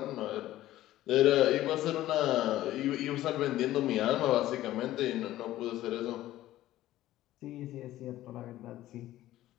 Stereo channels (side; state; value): right; quieter; 14.7 dB